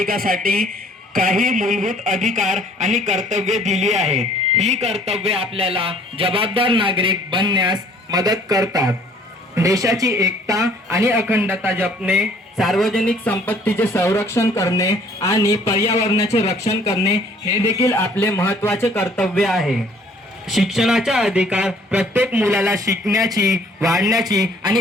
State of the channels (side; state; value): both; normal; correlation 0.57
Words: काही मूलभूत अधिकार आणि कर्तव्ये दिली आहेत। ही कर्तव्ये आपल्याला जबाबदार नागरिक बनण्यास मदत करतात। देशाची एकता आणि अखंडता जपणे, सार्वजनिक संपत्तीचे संरक्षण करणे आणि पर्यावरणाचे रक्षण करणे हे देखील आपले महत्त्वाचे कर्तव्य आहे। शिक्षणाचा अधिकार प्रत्येक मुलाला शिकण्याची, वाढण्याची